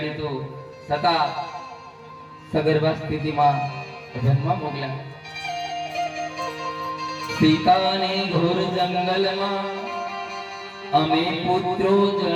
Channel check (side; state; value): both; identical; correlation 1.00